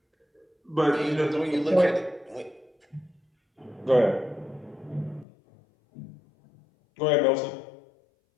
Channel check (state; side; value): drops out; right; at 5.2 s